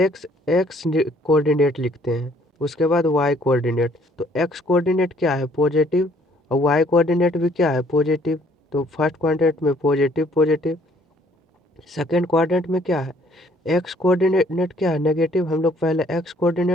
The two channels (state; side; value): normal; both; correlation 0.62